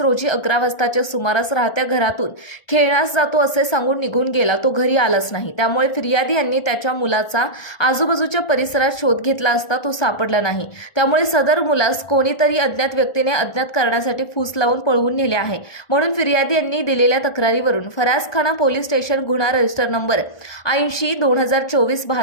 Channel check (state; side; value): late; right; 1.4 ms